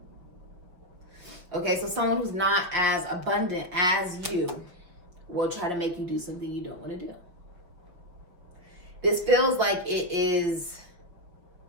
Okay, so someone who's not as abundant as you will try to make you do something you don't want to do. This feels like it is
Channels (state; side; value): late; left; 5.7 ms